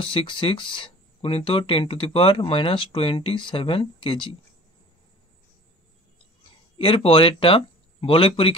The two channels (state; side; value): normal; both; correlation 0.44